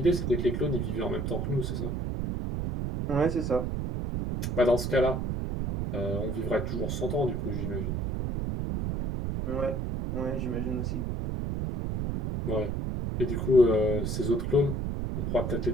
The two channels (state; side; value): noise; right; rumble, 1 dB below the sound